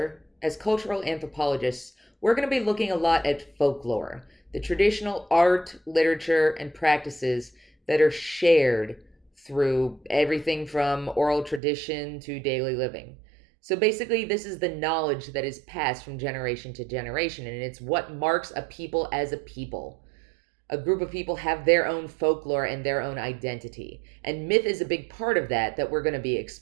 as cultural anthropologists, we're going to be looking a lot at folklore, the traditional art, literature, and practices that are shared through everything from oral tradition to daily living. So basically, this is the knowledge that is passed from generation to generation, and it's what marks a people as a people. A group of people have their own folklore and their own identity, and myth is a big part of that we're going to be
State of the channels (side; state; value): left; drops out; at 11.6 s